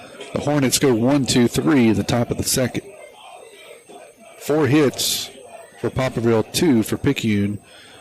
The Hornets go 1-2-3 in the top of the second. 4 hits for Poplarville, 2 for Picayune.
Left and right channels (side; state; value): both; identical; correlation 1.00